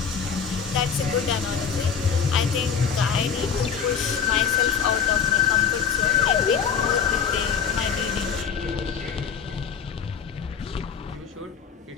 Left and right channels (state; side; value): quieter; right; 6.9 dB